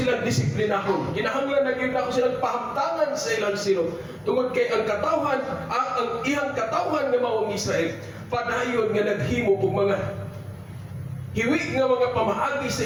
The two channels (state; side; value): identical; both; correlation 1.00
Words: disiplinahon. Kinahanglan na gayon nako silang pahamtangan sa ilang silot. Tungod kay ang katawhan ang iyang katawhan nga mao ang Israel padayon nga naghimo og mga hiwi nga mga pamaagi sa